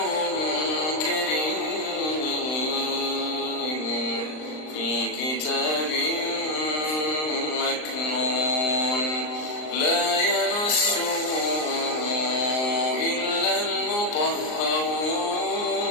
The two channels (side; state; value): right; late; 39 ms